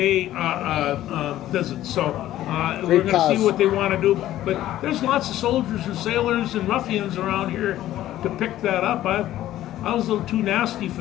visit. So we're going to see what they want to do. But there's lots of soldiers and sailors and ruffians around here to pick that up. I was a little too nasty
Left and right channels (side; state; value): right; quieter; 13.7 dB